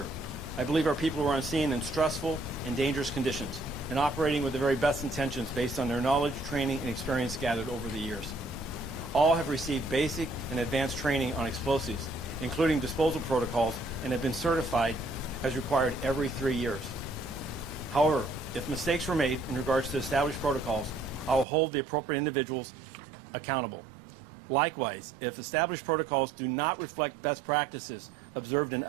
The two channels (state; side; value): drops out; left; at 21.5 s